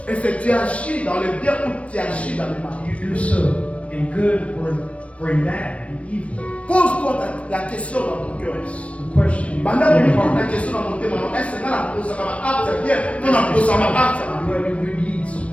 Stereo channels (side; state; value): right; late; 0.063 ms